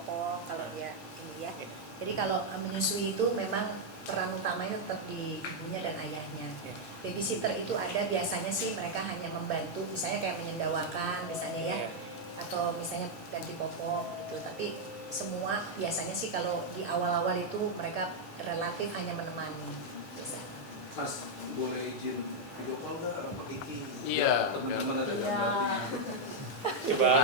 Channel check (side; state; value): right; late; 8.2 ms